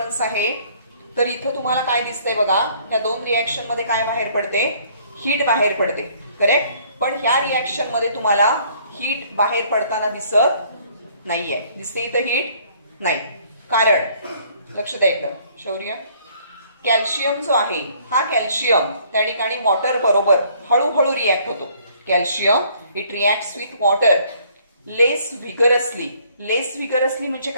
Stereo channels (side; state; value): both; inverted; correlation -0.61